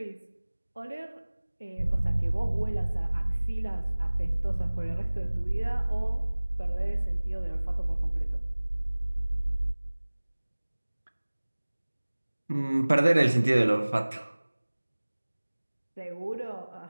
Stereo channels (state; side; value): inverted; both; correlation -1.00